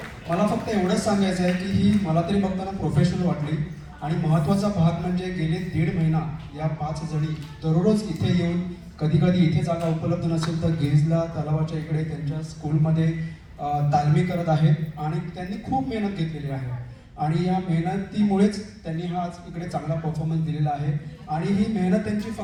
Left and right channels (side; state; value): both; identical; correlation 1.00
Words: मला फक्त एवढंच सांगायचं आहे की ही मला तरी बघताना प्रोफेशनल वाटली आणि महत्त्वाचा भाग म्हणजे गेले 1.5 महिना या 5 जणी दररोज इथे येऊन कधी कधी इथे जागा उपलब्ध नसेल तर गिरिजला तलावाच्या इकडे त्यांच्या स्कूलमध्ये तालमी करत आहेत आणि त्यांनी खूप मेहनत घेतलेली आहे आणि या मेहनतीमुळेच त्यांनी हा आज इकडे चांगला परफॉर्मन्स दिलेला आहे आणि ही मेहनत त्यांची